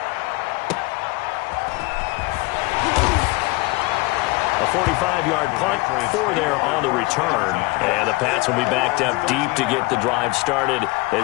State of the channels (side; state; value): right; quieter; 23.2 dB